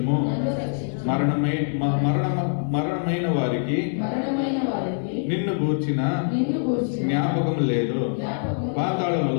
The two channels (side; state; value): right; silent; digital silence